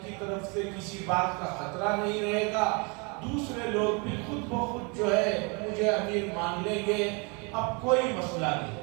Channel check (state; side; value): quieter; left; 31.8 dB